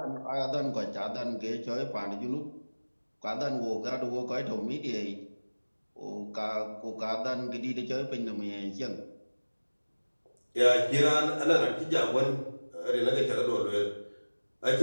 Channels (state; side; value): inverted; both; correlation -1.00